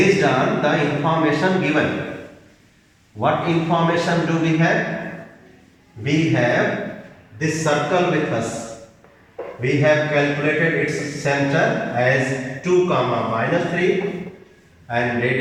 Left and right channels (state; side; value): identical; both; correlation 1.00